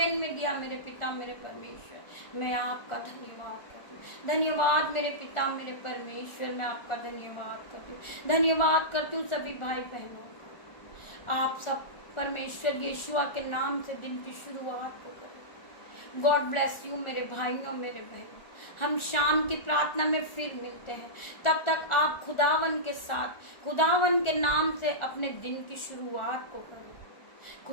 में दिया। मेरे पिता मेरे परमेश्वर, मैं आपका धन्यवाद करती हूँ। धन्यवाद मेरे पिता मेरे परमेश्वर, मैं आपका धन्यवाद करती हूँ। धन्यवाद करती हूँ सभी भाई बहनों का। आप सब परमेश्वर यीशुआ के नाम से दिन की शुरुआत को करें। गॉड ब्लेस यू मेरे भाइयों मेरे बहनों। हम शाम की प्रार्थना में फिर मिलते हैं। तब तक आप खुदावन के साथ, खुदावन के नाम से अपने दिन की शुरुआत को करें।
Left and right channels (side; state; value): right; late; 1.4 ms